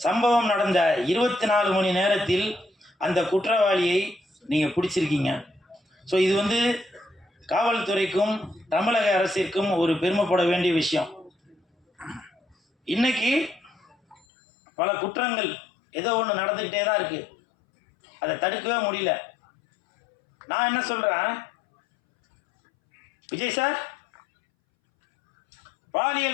சம்பவம் நடந்த 24 மணி நேரத்தில் அந்த குற்றவாளியை நீங்கள் பிடிச்சிருக்கீங்க. ஸோ இது காவல்துறைக்கும் தமிழக அரசிற்கும் ஒரு பெருமைப்பட வேண்டிய விஷயம். இன்னைக்கு பல குற்றங்கள் ஏதோ ஒன்று நடந்துக்கிட்டே தான் இருக்குது, அதை தடுக்கவே முடியல. நான் என்ன சொல்கிறேன், விஜய் சார்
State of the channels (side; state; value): right; drops out; at 14.2 s